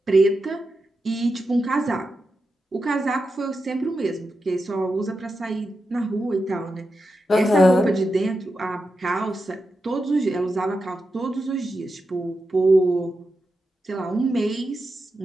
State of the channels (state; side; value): normal; both; correlation 0.89